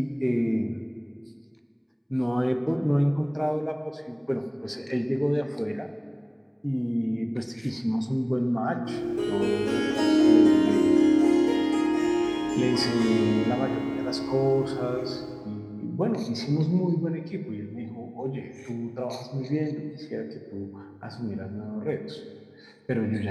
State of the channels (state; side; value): identical; both; correlation 1.00